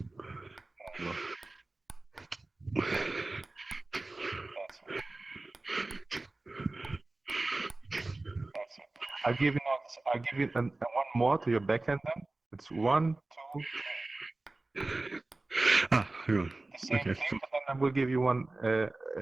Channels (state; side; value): quieter; left; 3.1 dB